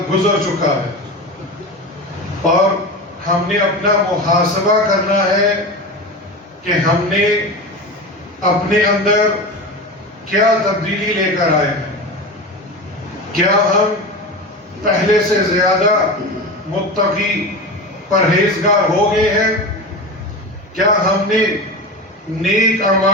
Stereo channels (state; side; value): normal; both; correlation 0.26